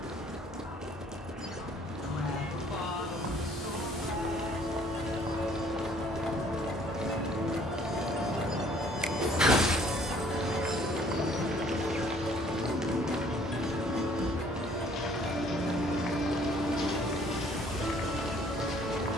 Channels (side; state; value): both; normal; correlation 0.58